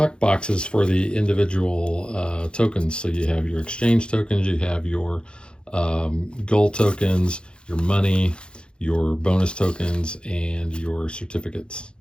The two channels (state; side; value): late; right; 0.053 ms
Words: boxes for the individual tokens. So you have your exchange tokens, you have your gold tokens, your money, your bonus tokens, and your certificates.